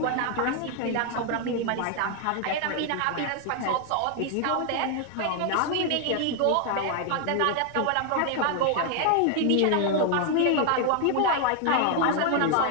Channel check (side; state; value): both; different; correlation 0.00